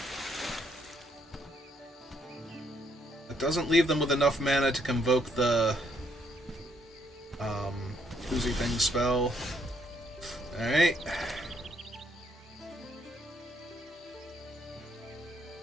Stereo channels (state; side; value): normal; both; correlation 0.71